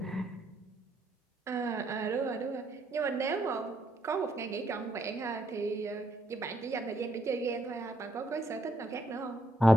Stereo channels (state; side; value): normal; both; correlation 0.73